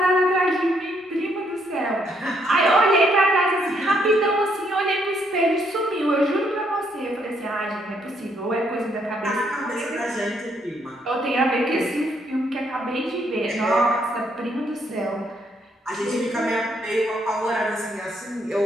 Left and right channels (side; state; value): both; normal; correlation 0.72